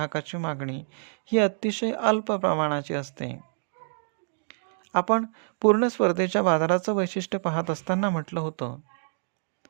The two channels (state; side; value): silent; left; digital silence